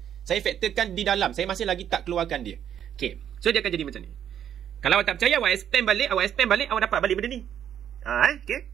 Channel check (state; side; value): quieter; left; 9.6 dB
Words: Saya faktorkan di dalam. Saya masih lagi tak keluarkan dia. Okay. So dia akan jadi macam ni. Kalau awak tak percaya, awak expand balik, awak dapat balik benda ni. Okay.